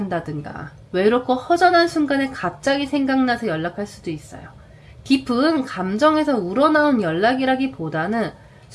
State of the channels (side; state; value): both; identical; correlation 1.00